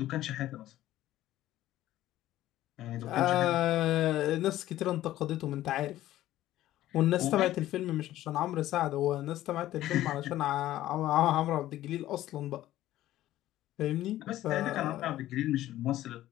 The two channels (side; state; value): right; quieter; 14.3 dB